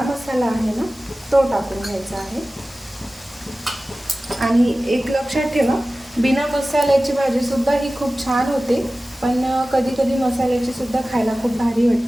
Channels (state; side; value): normal; both; correlation 0.96